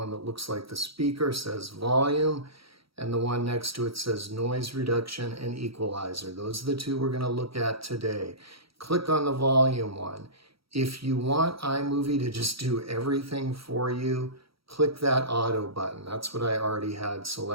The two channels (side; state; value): left; late; 0.75 ms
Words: that looks like the speaker says volume, and the one next to it says noise reduction and equalizer. Those are the two we're going to look at today. Click on the volume one. If you want iMovie to just do everything for you, click that auto button. That's what I already had